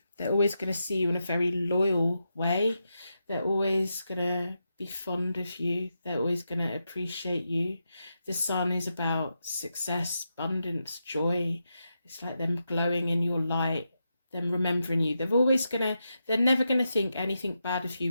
They're always going to see you in a very loyal way. They're always going to be fond of you. They're always going to appreciate you. The sun is about success, abundance, joy. It's like them glowing in your light, them remembering you. They're never going to think anything bad of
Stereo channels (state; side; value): inverted; both; correlation -0.86